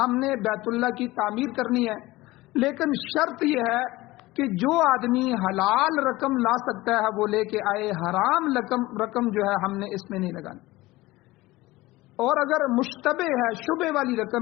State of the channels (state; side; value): quieter; right; 19.2 dB